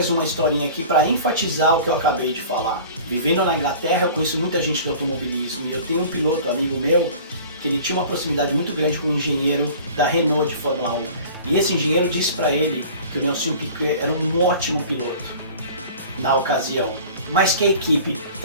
uma historinha aqui para enfatizar o que eu acabei de falar. Vivendo na Inglaterra, eu conheço muita gente do automobilismo, e eu tenho um piloto, amigo meu, que ele tinha uma proximidade muito grande com um engenheiro da Renault de Fórmula 1. E esse engenheiro disse para ele que o Nelsinho Piquet era um ótimo piloto na ocasião, mas que a equipe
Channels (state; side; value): inverted; both; correlation -0.43